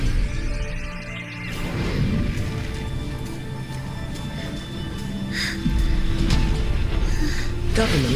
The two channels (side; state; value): both; identical; correlation 1.00